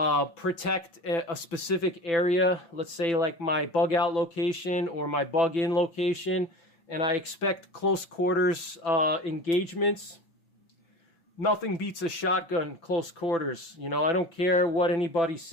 protect a specific area, let's say like my bug out location or my bug in location, and I expect close quarters engagements, nothing beats a shotgun close quarters. You know, I don't care what anybody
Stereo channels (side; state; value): right; late; 6.0 ms